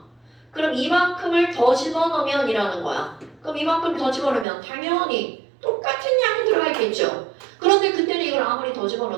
그럼 이만큼을 더 집어넣으면 이라는 거야. 그럼 이만큼 더 집어넣으면 당연히 똑같은 양이 들어가 있겠죠. 그런데 그때는 이걸 아무리 더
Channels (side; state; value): left; drops out; at 4.5 s